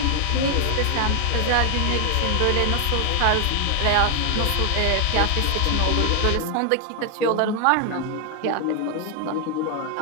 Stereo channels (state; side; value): different; both; correlation 0.00